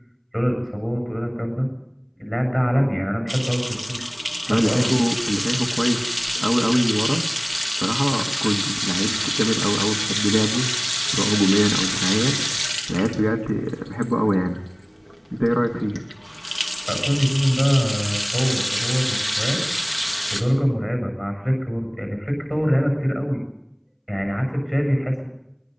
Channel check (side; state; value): both; identical; correlation 1.00